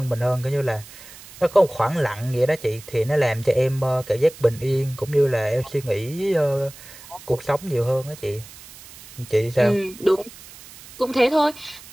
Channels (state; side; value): noise; right; hiss, 19 dB below the sound